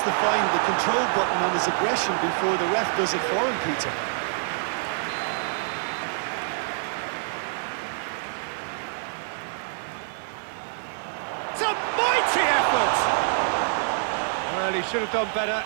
to find the control button on his aggression before the ref does it for him, Peter. It's a Well, he should have done better,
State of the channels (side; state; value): left; silent; digital silence